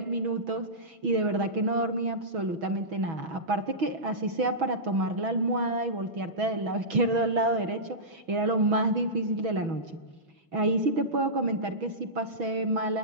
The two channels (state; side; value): late; left; 6.2 ms